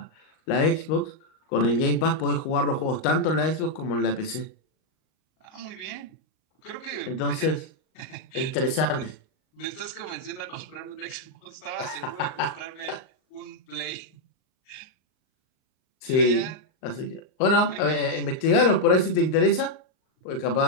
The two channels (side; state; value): right; late; 38 ms